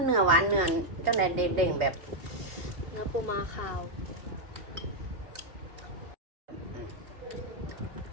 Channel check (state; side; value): late; left; 3.2 ms